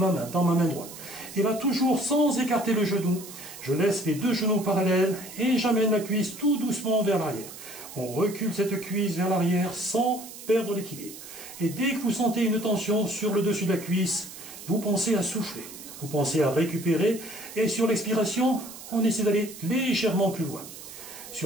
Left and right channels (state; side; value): noise; right; hiss, 14 dB below the sound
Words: main, dans ma main droite. Et là, toujours sans écarter le genou, je laisse les deux genoux parallèles et j'amène la cuisse tout doucement vers l'arrière. On recule cette cuisse vers l'arrière sans perdre l'équilibre. Et dès que vous sentez une tension sur le dessus de la cuisse, vous pensez à souffler, vous pensez à récupérer, et sur l'expiration, on essaie d'aller légèrement plus loin.